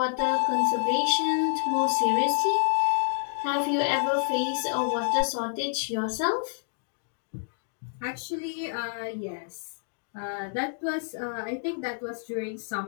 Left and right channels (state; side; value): silent; right; digital silence